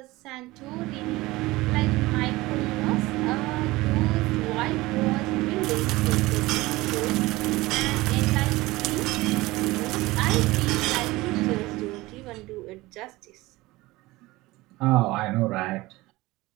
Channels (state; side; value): quieter; left; 19.9 dB